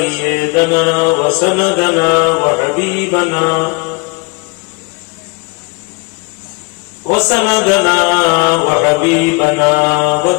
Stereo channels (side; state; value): right; quieter; 30.6 dB